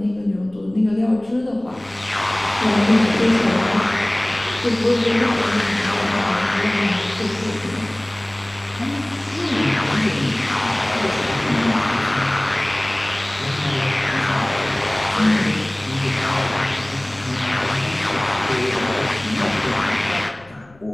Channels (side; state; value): left; noise; rumble, 27 dB below the sound